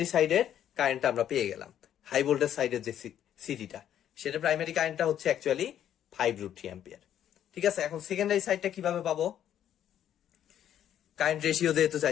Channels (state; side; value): quieter; right; 10.5 dB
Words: সাইডের কারেন্টটা আমরা পেয়ে গেলাম। হাই ভোল্টেজ সাইডের যে সিটিটা, সেটা প্রাইমারি কারেন্টটা হচ্ছে অ্যাকচুয়ালি 5√3 অ্যাম্পিয়ার। ঠিক আছে, এখন সেকেন্ডারি সাইডটা কিভাবে পাবো? কারেন্ট রেশিও যেহেতু